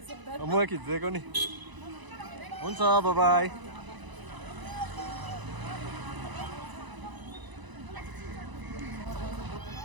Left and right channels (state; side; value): late; left; 1.0 ms